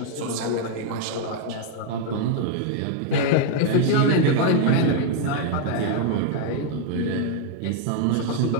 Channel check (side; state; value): both; different; correlation 0.00